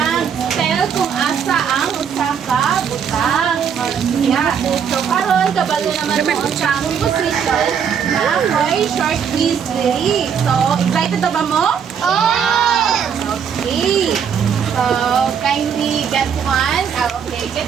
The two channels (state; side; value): quieter; left; 7.5 dB